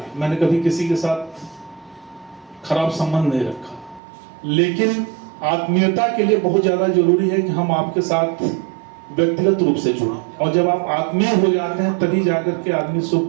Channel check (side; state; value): left; drops out; at 4.0 s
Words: मैंने कभी किसी के साथ खराब संबंध नहीं रखा। लेकिन आत्मीयता के लिए बहुत ज्यादा जरूरी है कि हम आपके साथ व्यक्तिगत रूप से जुड़ें, और जब आप आत्मीय हो जाते हैं तभी जाकर के आदमी सुख